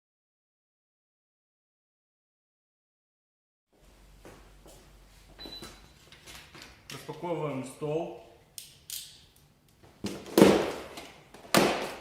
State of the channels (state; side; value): identical; both; correlation 1.00